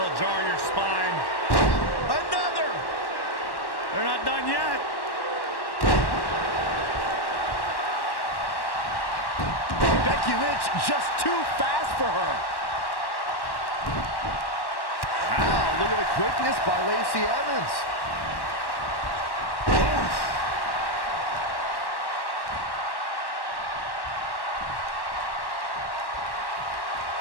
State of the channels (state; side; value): late; right; 1.1 ms